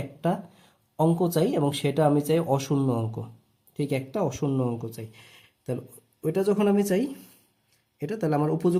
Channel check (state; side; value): identical; both; correlation 1.00